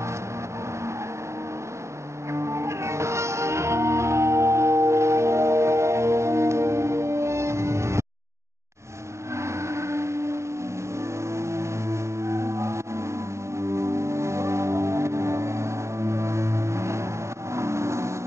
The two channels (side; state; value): left; late; 0.14 ms